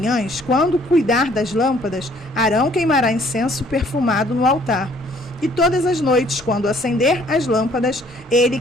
quando cuidar das lâmpadas, Arão queimará incenso perfumado no altar. E todas as noites, quando acender as lâmpadas, ele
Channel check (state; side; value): normal; both; correlation 0.60